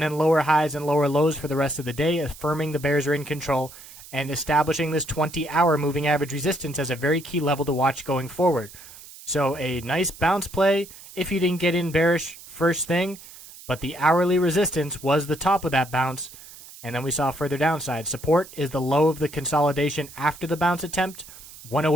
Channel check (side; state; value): right; noise; hiss, 18 dB below the sound